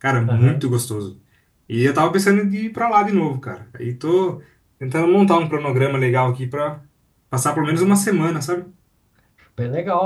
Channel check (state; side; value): identical; both; correlation 1.00